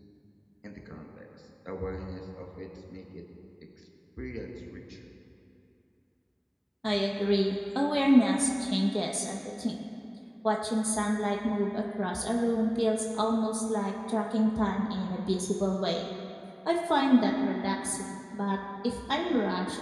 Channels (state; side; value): identical; both; correlation 1.00